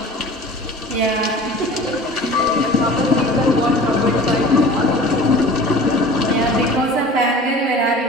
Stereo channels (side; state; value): both; normal; correlation 0.42